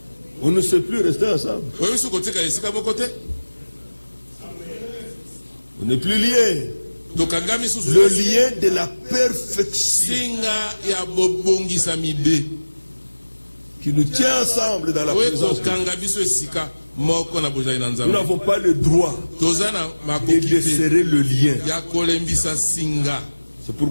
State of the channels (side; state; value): both; inverted; correlation -1.00